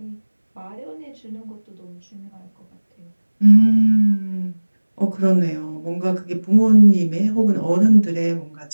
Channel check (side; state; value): both; inverted; correlation -1.00